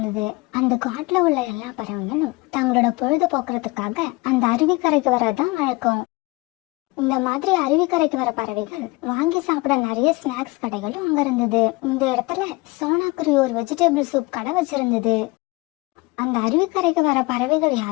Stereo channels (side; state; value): right; quieter; 23.8 dB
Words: அந்த காட்டுல உள்ள எல்லா பறவைகளும் தங்களோட பொழுது போக்குறதுக்காக அந்த அருவிக்கரைக்கு வரதான் வழக்கம். இந்த மாதிரி அருவிக்கரைக்கு வர பறவைகள் வாங்கி சாப்பிட நிறைய ஸ்நாக்ஸ் கடைகளும் அங்க இருந்தது. இந்த இடத்துல சோனாக்குருவி ஒரு வெஜிடபிள் சூப் கடை வச்சிருந்தது. அந்த அருவிக்கரைக்கு வர பறவைகள்